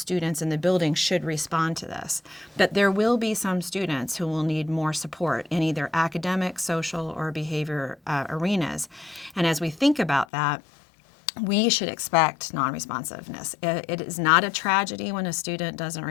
in the building should respond to this. But there will be some students who will need more support in either academic, social, or behavior arenas. And as we think about that, we should expect non-responsiveness. It is not a tragedy when a student doesn't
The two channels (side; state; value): right; drops out; at 10.2 s